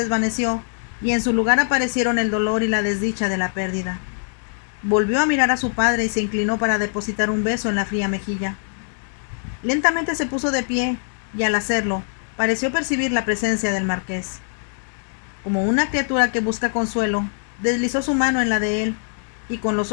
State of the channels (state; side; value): silent; right; digital silence